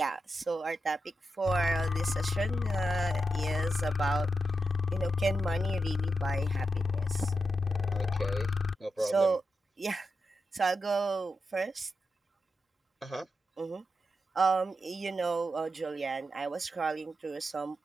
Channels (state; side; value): normal; both; correlation 0.87